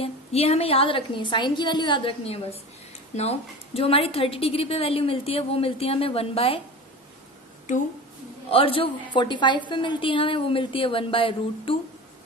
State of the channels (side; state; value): both; normal; correlation 0.32